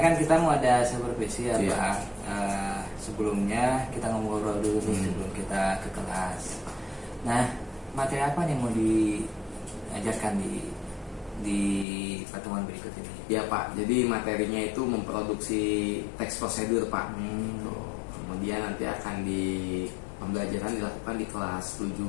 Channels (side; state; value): right; drops out; at 11.9 s